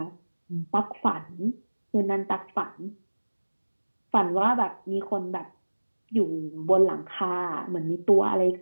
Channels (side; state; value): both; inverted; correlation -1.00